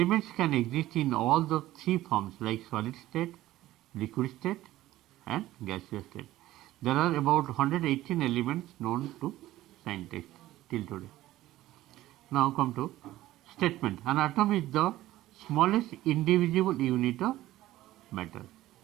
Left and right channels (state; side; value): quieter; left; 15.5 dB